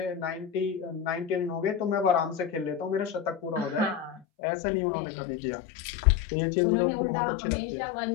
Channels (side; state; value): right; drops out; at 4.2 s